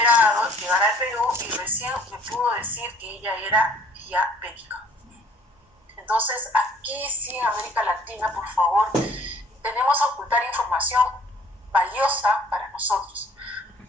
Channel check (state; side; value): normal; both; correlation 0.57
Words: llegar al Perú y recién me pudo decir que ella era diabética. Entonces, aquí sí, en América Latina, por favor, tenemos a ocultar información valiosa para nosotros.